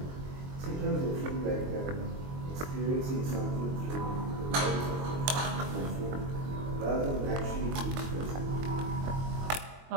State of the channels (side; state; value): left; late; 22 ms